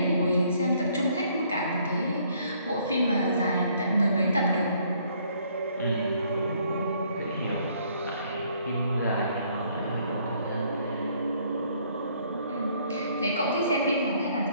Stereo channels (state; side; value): inverted; both; correlation -0.65